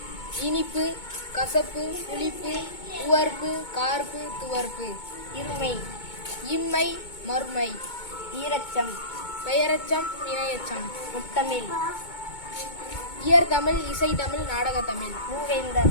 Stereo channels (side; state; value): right; late; 2.2 ms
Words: இனிப்பு, கசப்பு, புளிப்பு, உவர்ப்பு, கார்ப்பு, துவர்ப்பு. இருமை, இம்மை, மறுமை. ஈரச்சம், பெயரச்சம், இணையச்சம். முத்தமிழ், இயற்தமிழ், இசைத்தமிழ், நாடகத்தமிழ்.